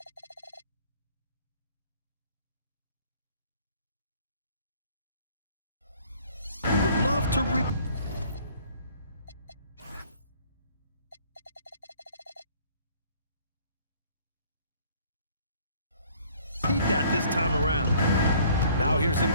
Love to repeat that this time around. Now here's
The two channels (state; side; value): inverted; both; correlation -0.57